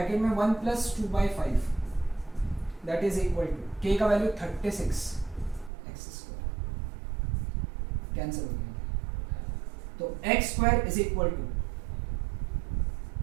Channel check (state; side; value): drops out; left; at 5.7 s